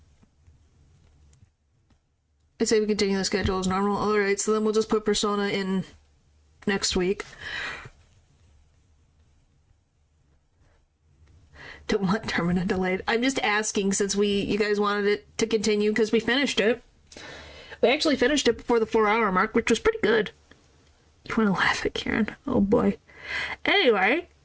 I say we continue the schedule as normal. Alright, so then we'll just put Persona in next week. Don't want Termina delayed. I'm just asking since you guys wanted it to continue because we finished it. We actually finished it before the 4-hour mark, which was pretty good. You want to laugh at Karen? Oh boy. Anyway,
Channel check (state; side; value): identical; both; correlation 1.00